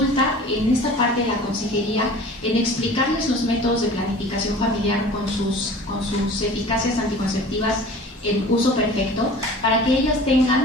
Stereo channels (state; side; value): normal; both; correlation 0.42